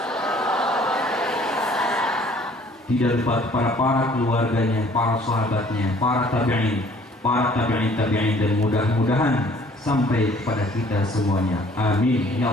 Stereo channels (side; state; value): both; normal; correlation 0.56